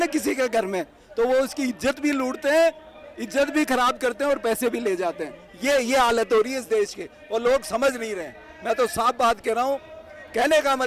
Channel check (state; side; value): identical; both; correlation 1.00